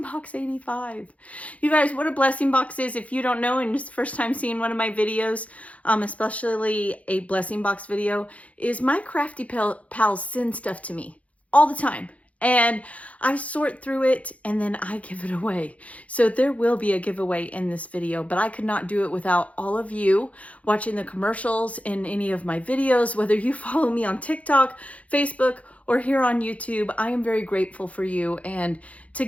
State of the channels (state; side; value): late; right; 0.066 ms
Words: 85. You guys, what a Blessing Box is, if you don't know and it's the first time seeing one of my videos, especially a Blessing Box video, is my crafty pals send stuff to me all the time. And I sort through it and then I give it away. So there will be a giveaway in this video, but I could not do it without all of you watching the commercials in any of my videos, whether you follow me on TikTok, Facebook, or here on YouTube. I am very grateful for you, and